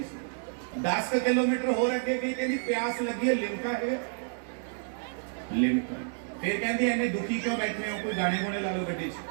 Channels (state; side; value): silent; left; digital silence